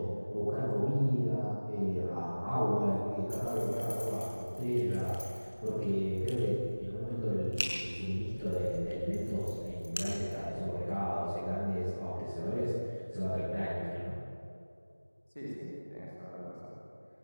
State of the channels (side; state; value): both; inverted; correlation -1.00